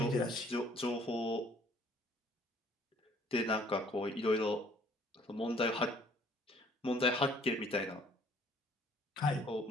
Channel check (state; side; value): normal; both; correlation 0.59